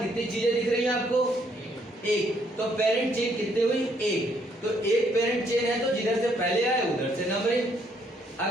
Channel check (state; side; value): normal; both; correlation 0.69